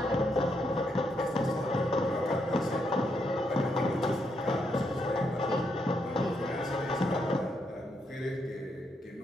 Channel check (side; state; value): both; normal; correlation 0.78